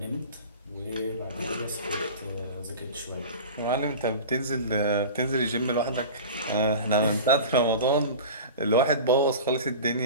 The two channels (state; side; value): inverted; both; correlation -0.33